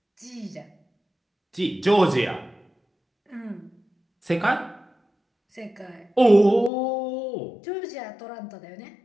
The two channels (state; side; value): drops out; right; at 6.7 s